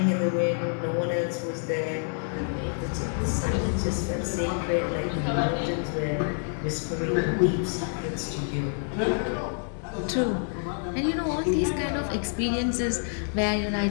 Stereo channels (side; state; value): right; silent; 60 dB below the other